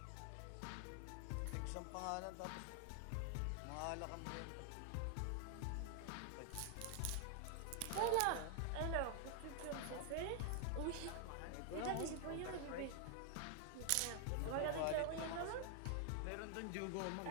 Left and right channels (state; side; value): different; both; correlation 0.00